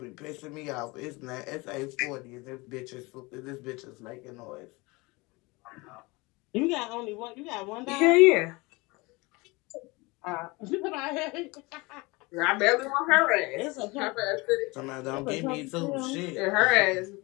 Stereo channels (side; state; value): right; quieter; 24.8 dB